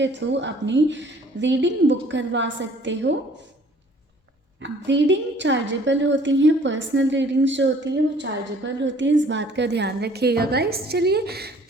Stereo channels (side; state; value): both; normal; correlation 0.55